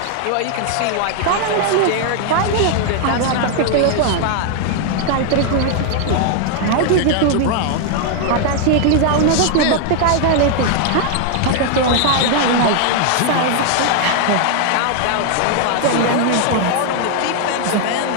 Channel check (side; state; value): both; different; correlation 0.00